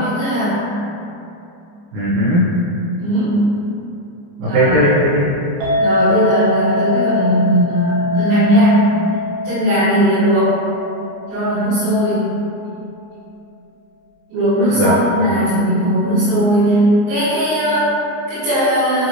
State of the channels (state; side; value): late; left; 29 ms